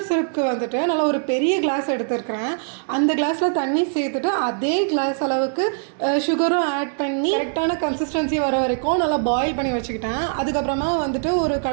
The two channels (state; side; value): silent; left; digital silence